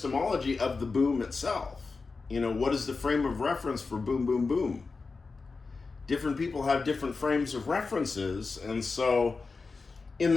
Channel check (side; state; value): right; quieter; 4.3 dB